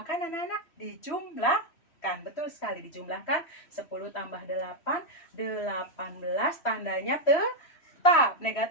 anak-anak? Dijumlahkan. Betul sekali, dijumlahkan. 10 tambah 8, 18. Tandanya tetap.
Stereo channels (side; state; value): right; late; 3.1 ms